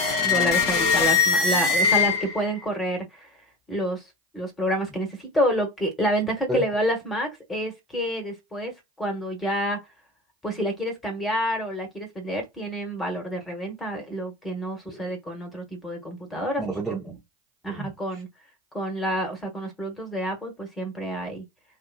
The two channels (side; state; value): both; normal; correlation 0.31